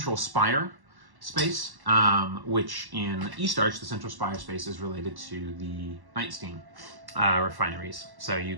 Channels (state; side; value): late; left; 1.1 ms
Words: spire space, which in East Arch, the central spire space is related to the Nightstein refineries. So you